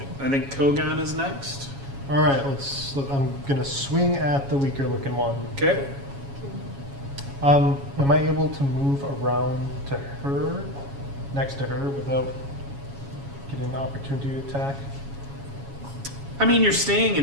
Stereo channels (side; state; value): left; late; 7.2 ms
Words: I think Kogan is next. Alright, I'm gonna swing at the weaker looking one. Okay. Am I able to move around to her, next to her, without an opportunity attack? I mean, you're staying